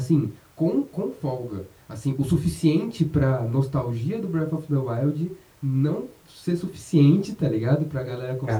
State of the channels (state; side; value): identical; both; correlation 1.00